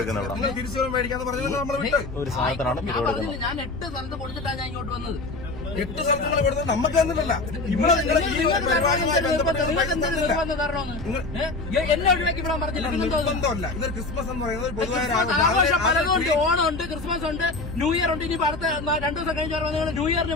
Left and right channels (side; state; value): right; quieter; 3.4 dB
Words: തിരിച്ചു മേടിക്കാന്ന് പറഞ്ഞത് നമ്മൾ വിട്ട് ഒരു സാധനത്തിനാണ് ഞാൻ 8 സ്ഥലത്ത് കൊടുത്തിട്ടാണ് ഞാൻ ഇങ്ങോട്ട് വന്നത്. 8 സ്ഥലത്തുകൾ കൊടുത്തത് നമുക്ക് തന്നിട്ടില്ല. ഇവിടെ നിങ്ങൾ ഈ പരിപാടിയുമായി ബന്ധപ്പെട്ട് എന്നെ ഒഴിവാക്കി വിടാൻ പറഞ്ഞില്ല. ബന്ധമല്ല. ഇതൊരു ക്രിസ്മസ് എന്ന് പറയുന്നത് പൊതുവായ ആഘോഷം പലതുണ്ട്. ഓണം ഉണ്ട്, ക്രിസ്മസ് ഉണ്ട്, ന്യൂ ഇയർ ഉണ്ട്. ഇനി അടുത്ത 2 ദിവസം കഴിഞ്ഞ നിങ്ങൾ ന്യൂ